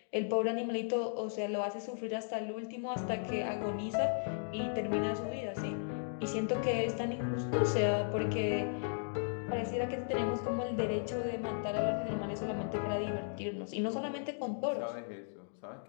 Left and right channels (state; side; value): silent; right; digital silence